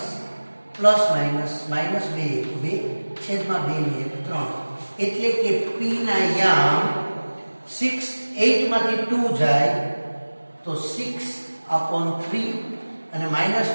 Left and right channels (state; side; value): inverted; both; correlation -1.00